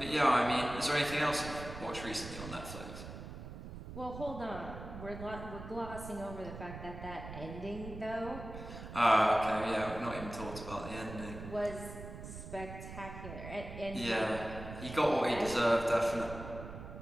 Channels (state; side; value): noise; right; rumble, 11 dB below the sound